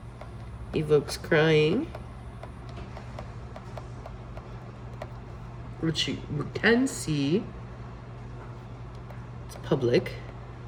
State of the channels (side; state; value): both; identical; correlation 1.00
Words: Evokes crying. Which you can see. It's public.